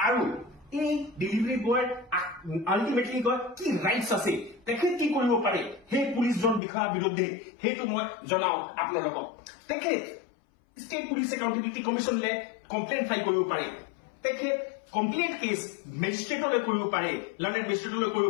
আৰু এই ডেলিভাৰী বয়ৰ আল্টিমেটলি কয় কি ৰাইটছ আছে, তেখেত কি কৰিব পাৰে সেই পুলিচজন বিষয়াৰ বিৰুদ্ধে সেইটো মই জনাও আপোনালোকক। তেখেত ষ্টেট পুলিচ একাউণ্টেবিলিটি কমিশ্যনলে কমপ্লেইন ফাইল কৰিব পাৰে, তেখেত কমপ্লেইন কেছ মেজিষ্ট্ৰেটলৈ কৰিব পাৰে, লণ্ডন মেজিষ্ট্ৰেটলৈ কৰিব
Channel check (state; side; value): drops out; right; at 6.6 s